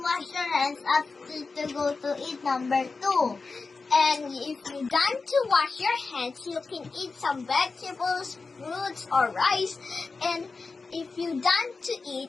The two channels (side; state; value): right; quieter; 4.2 dB